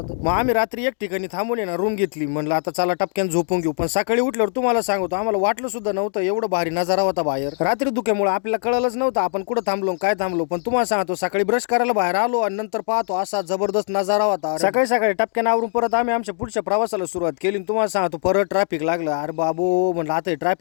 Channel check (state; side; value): silent; right; digital silence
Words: मग आम्ही रात्री एक ठिकाणी थांबून ना रूम घेतली. म्हणलं आता चला टपक्यान झोपून घेऊ. पण सकाळी उठल्यावर तुम्हाला सांगतो आम्हाला वाटलं सुद्धा नव्हतं एवढं भारी नजारा होता बाहेर. रात्री धुक्यामुळे आपल्याला कळलंच नव्हतं आपण कुठं थांबलो काय थांबलो. पण तुम्हाला सांगतो सकाळी ब्रश करायला बाहेर आलो आणि नंतर पाहतो असा जबरदस्त नजारा होता. सकाळी टपक्यान आवरून परत आम्ही आमच्या पुढच्या प्रवासाला सुरुवात केली. तुम्हाला सांगतो परत ट्रॅफिक लागलं. अरे बाबू म्हणलं आता